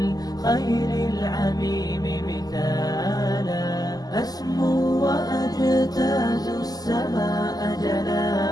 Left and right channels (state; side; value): late; right; 0.18 ms